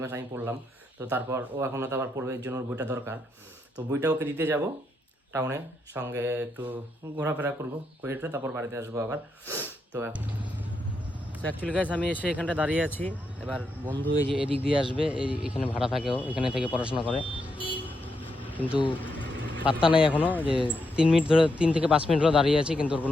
মাস আমি পড়লাম, তো তারপর ও এখন তো আবার পড়বে, এর জন্য ওর বইটা দরকার। তো বইটা ওকে দিতে যাব টাউনে, সঙ্গে একটু ঘোরাফেরা করবো করে তারপর বাড়িতে আসবো আবার। তো অ্যাকচুয়ালি গাইস আমি এসে এখানটা দাঁড়িয়ে আছি, এবার বন্ধু এই যে এদিক দিয়ে আসবে, এখানে ভাড়া থাকেও, এখানে থেকে পড়াশোনা করে, কিন্তু পাত্তা নাই এখনও, যে 3 মিনিট ধরে 3 থেকে 5 মিনিট ধরে দাঁড়িয়ে আছি, কিন্তু ওর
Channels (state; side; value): normal; both; correlation 0.81